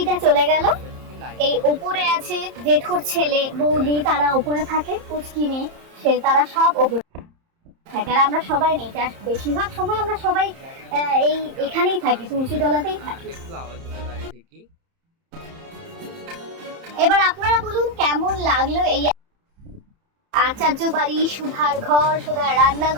চলে গেল, এই উপরে আছে জেঠুর ছেলে বৌদি, তারা উপরে থাকে। পুচকি মেয়ে, সে তারা সব উপরে থাকে। আর আমরা সবাই নেই, বেশিরভাগ সময় আমরা সবাই এখানেই থাকি, তুলসী তলাতেই থাকি। একটু আওয়াজ হতে পারে ঠিকই। এবার আপনারা বলুন কেমন লাগলো এই আচার্য বাড়ি, সুধার ঘর, সুধার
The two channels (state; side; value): late; left; 30 ms